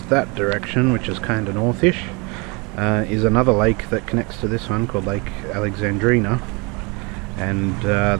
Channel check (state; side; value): quieter; left; 29.0 dB